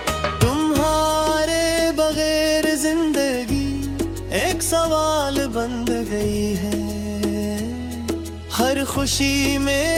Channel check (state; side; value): identical; both; correlation 1.00